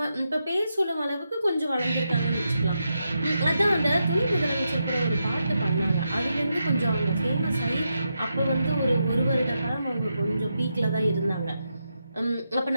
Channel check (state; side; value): inverted; both; correlation -0.85